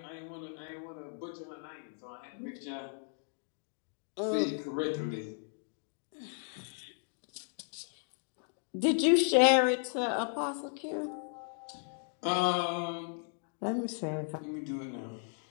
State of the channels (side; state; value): right; silent; 54 dB below the other